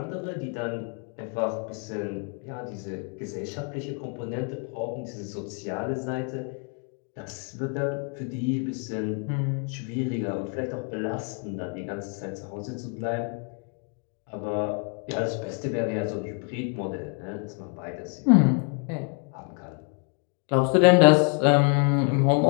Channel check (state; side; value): quieter; right; 38.8 dB